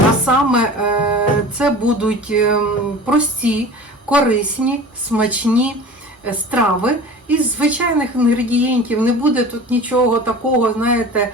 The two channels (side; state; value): both; normal; correlation 0.38